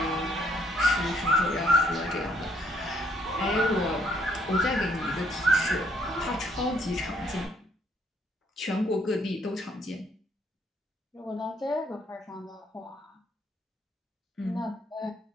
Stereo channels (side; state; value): both; normal; correlation 0.67